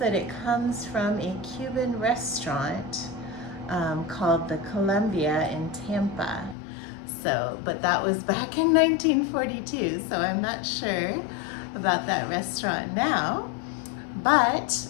it comes from a Cuban restaurant called the Columbia in Tampa. But that was back in 1942, so I'm not sure about that restaurant now. But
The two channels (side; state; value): right; drops out; at 6.6 s